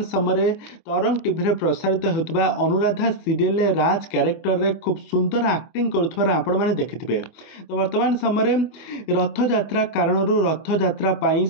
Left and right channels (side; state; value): right; late; 24 ms